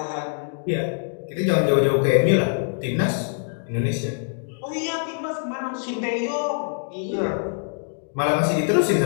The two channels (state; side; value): silent; right; digital silence